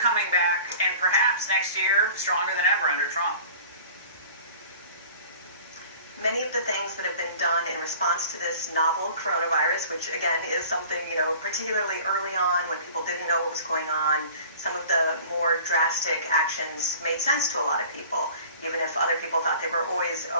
back, and perhaps next year, stronger than ever under Trump. Many of the things that have been done in response to this novel coronavirus, which again is something, particularly early on when people didn't know what was going on, some of the more drastic actions made sense to a lot of people, even if other people thought they were always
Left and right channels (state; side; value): inverted; both; correlation -0.45